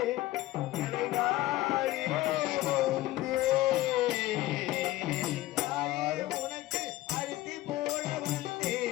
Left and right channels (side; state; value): right; quieter; 16.6 dB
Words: உனக்கு அரிசி போட